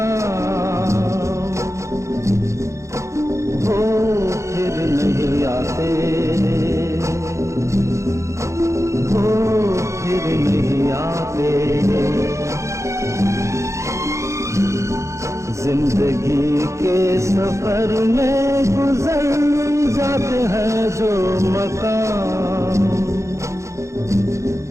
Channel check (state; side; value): late; left; 0.14 ms